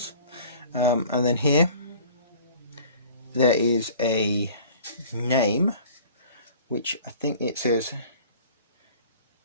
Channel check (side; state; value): both; inverted; correlation -0.46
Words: and then here there is a name, which I think it says